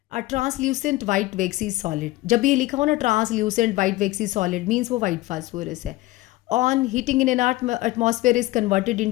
A translucent white waxy solid, जब ये लिखा हो ना translucent white waxy solid means वो वाइट फास्फोरस है। On heating in an atmosphere is converted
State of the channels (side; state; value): right; quieter; 18.6 dB